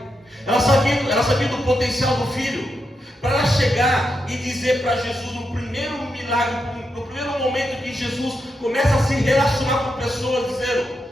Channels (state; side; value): normal; both; correlation 0.85